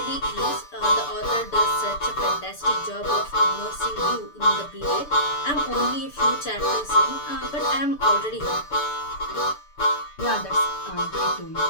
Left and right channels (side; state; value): right; late; 6.9 ms